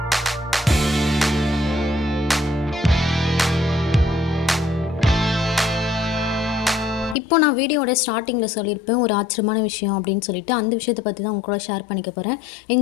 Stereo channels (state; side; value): drops out; right; at 7.2 s